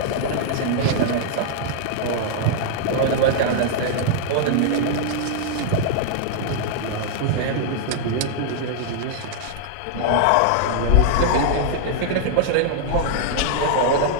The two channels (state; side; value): different; both; correlation -0.01